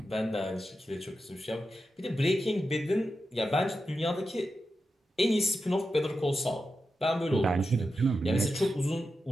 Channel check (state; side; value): normal; both; correlation 0.89